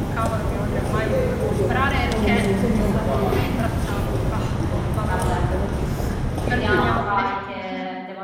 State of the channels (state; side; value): identical; both; correlation 1.00